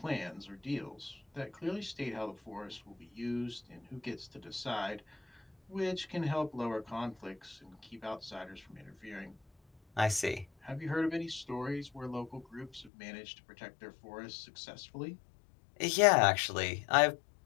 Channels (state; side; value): drops out; right; at 12.9 s